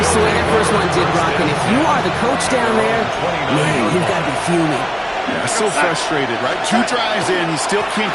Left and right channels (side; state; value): both; identical; correlation 1.00